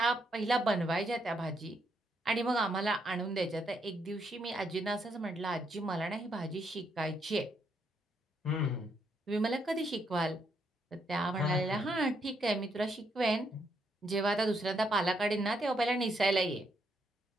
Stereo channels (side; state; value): both; normal; correlation 0.76